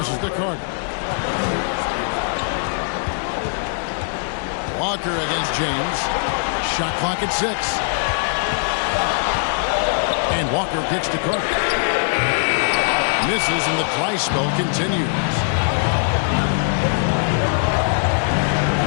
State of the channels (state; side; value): silent; right; digital silence